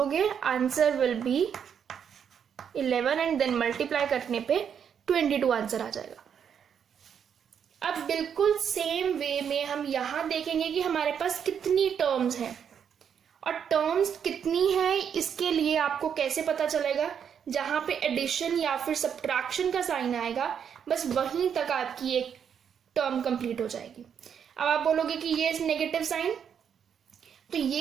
answer will be 11 and then multiply करने पे 22 आंसर आ जाएगा। अब बिल्कुल सेम वे में हम यहां देखेंगे कि हमारे पास कितनी टर्म्स हैं, और टर्म्स कितनी है इसके लिए आपको कैसे पता चलेगा, जहां पे एडिशन या फिर सब्ट्रैक्शन का साइन आएगा बस वहीं तक आपकी एक टर्म कंप्लीट हो जाएगी। अब आप बोलोगे कि ये नेगेटिव साइन, तो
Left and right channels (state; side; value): quieter; left; 7.9 dB